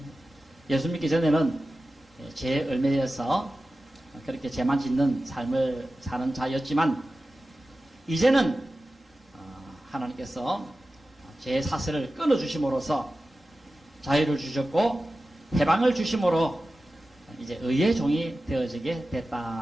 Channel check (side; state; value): both; normal; correlation 0.94